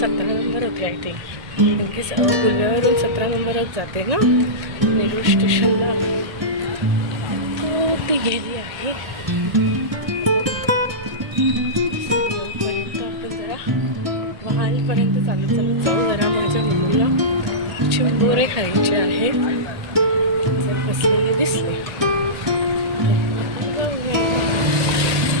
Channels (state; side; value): late; left; 1.6 ms